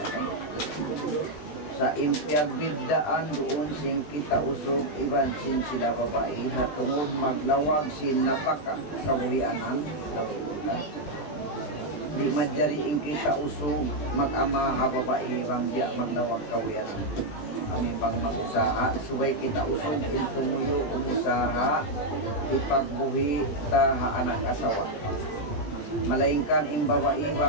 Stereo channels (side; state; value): right; late; 20 ms